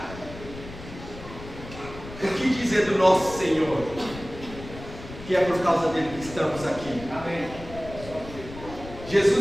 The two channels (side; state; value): left; noise; rumble, 14 dB below the sound